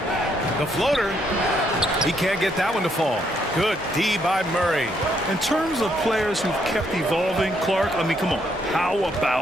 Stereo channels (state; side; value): normal; both; correlation 0.73